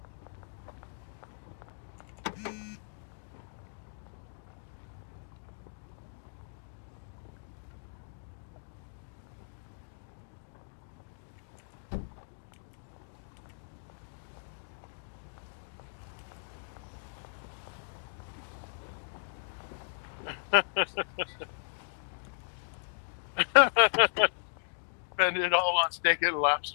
Spend it all on steak and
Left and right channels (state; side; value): silent; right; digital silence